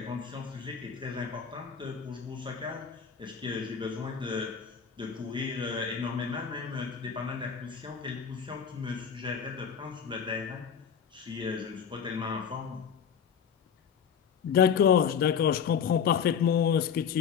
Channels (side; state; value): right; quieter; 7.3 dB